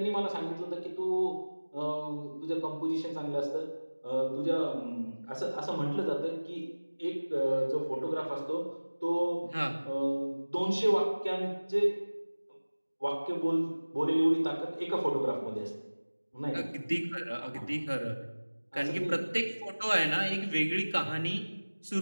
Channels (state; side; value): inverted; both; correlation -1.00